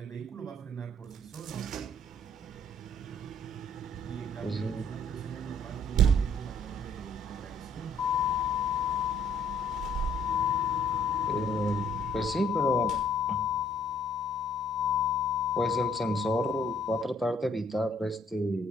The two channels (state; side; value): normal; both; correlation 0.61